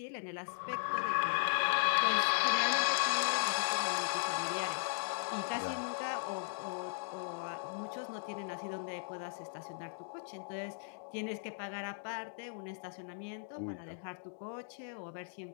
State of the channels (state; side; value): silent; right; digital silence